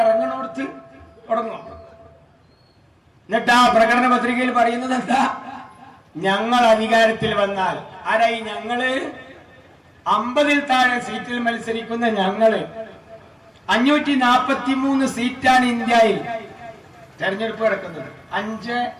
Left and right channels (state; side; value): identical; both; correlation 1.00